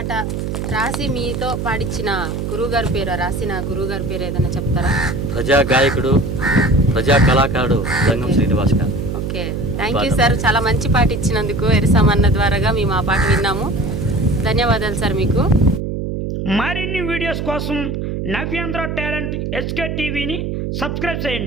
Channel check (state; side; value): noise; right; hum, 3 dB below the sound